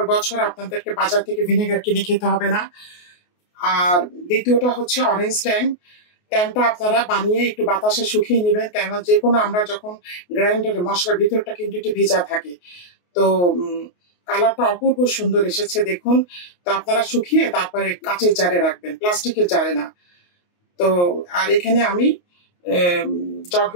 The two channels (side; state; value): right; late; 28 ms